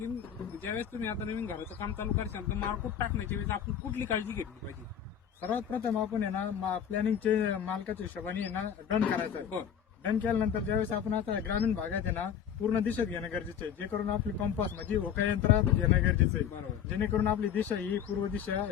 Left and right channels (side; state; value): right; quieter; 8.6 dB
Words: ज्यावेळेस तुम्ही आता नवीन घराचं काम चालू करशाल तर मारकूट टाकण्याच्या वेळेस आपण कुठली काळजी घेतली पाहिजे. सर्वात प्रथम आपण आहे ना प्लॅनिंगचे मालकाच्या हिशोबाने आहे ना डन करायचं आहे. बरं. डन केल्यानंतर ज्यावेळेस आपण आता ग्रामीण भागात आहे ना पूर्ण दिशेत घेणं गरजेचं आहे, जे करून आपली कंपास म्हणजे होका यंत्रात घेणं गरजेचं आहे. बरोबर. जेणेकरून आपली दिशा ही पूर्व दिशा